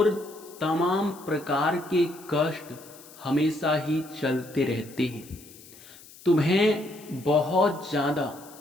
तमाम प्रकार के कष्ट हमेशा ही चलते रहते हैं। तुम्हें बहुत ज़्यादा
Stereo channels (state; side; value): noise; left; hiss, 21 dB below the sound